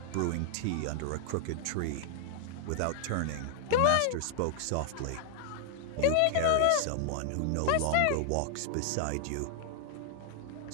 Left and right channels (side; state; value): both; different; correlation -0.01